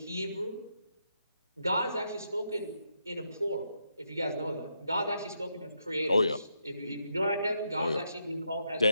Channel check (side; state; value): both; inverted; correlation -0.80